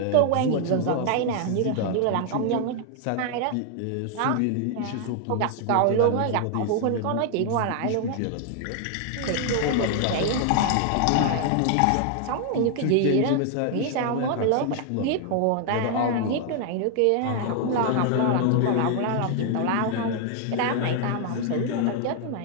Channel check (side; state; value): both; different; correlation 0.00